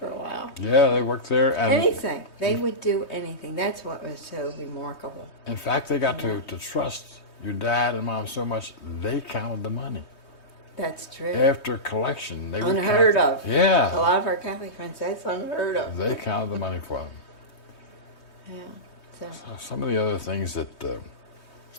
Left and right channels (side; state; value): right; late; 3.2 ms